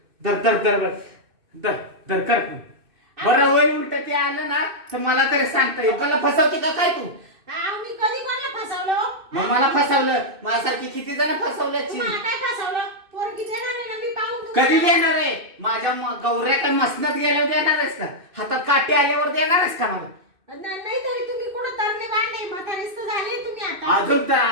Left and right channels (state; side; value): late; left; 2.6 ms